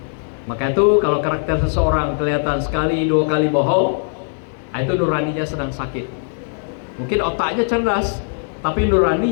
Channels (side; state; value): right; silent; digital silence